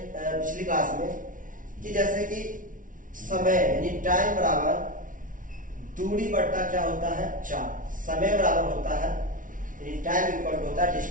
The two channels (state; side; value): late; left; 0.38 ms